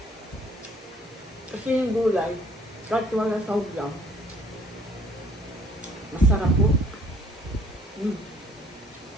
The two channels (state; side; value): normal; both; correlation 0.59